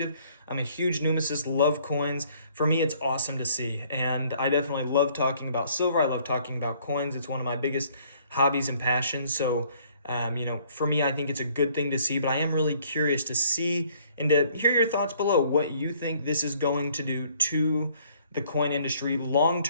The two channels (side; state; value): both; inverted; correlation -0.61